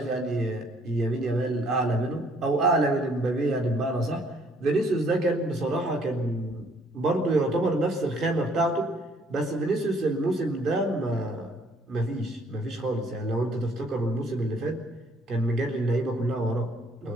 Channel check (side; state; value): both; normal; correlation 0.63